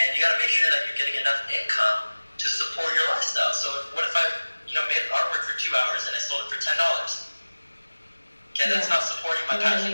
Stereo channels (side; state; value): both; inverted; correlation -1.00